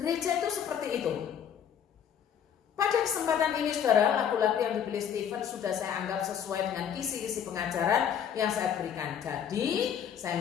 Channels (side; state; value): right; quieter; 8.5 dB